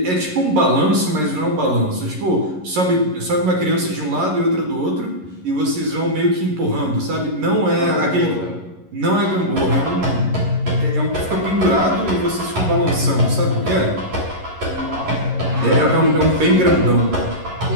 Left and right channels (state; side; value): late; left; 11 ms